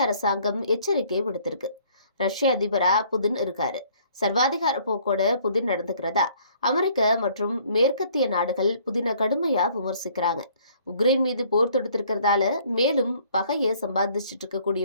அரசாங்கம் எச்சரிக்கை விடுத்திருக்கு. ரஷ்ய அதிபரா புதின் இருக்காரு. சர்வாதிகார போக்கோட புதின் நடந்துக்கிறதா அமெரிக்க மற்றும் மேற்கத்திய நாடுகள் புதினை கடுமையா விமர்சிக்கிறாங்க. உக்ரைன் மீது போர் தொடுத்திருக்கிறதால மேலும் பகையை சம்பாதிச்சுட்டு இருக்கக்கூடிய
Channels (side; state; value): both; inverted; correlation -0.60